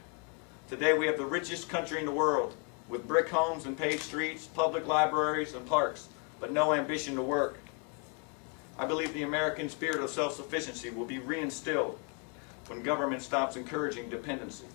Today we have the richest country in the world, with brick homes and paved streets, public libraries and parks, but no ambition to work. I believe the American spirit of self-sufficiency will be reinstilled when government stops encouraging dependency.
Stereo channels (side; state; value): right; quieter; 35.6 dB